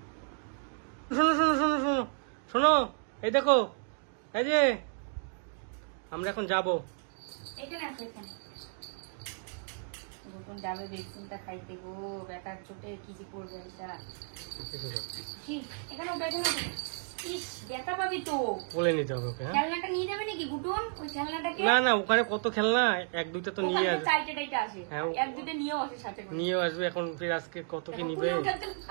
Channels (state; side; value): silent; left; 56 dB below the other